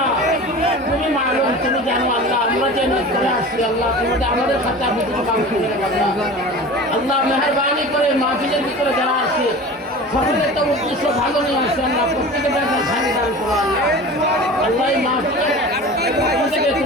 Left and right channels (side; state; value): both; normal; correlation 0.36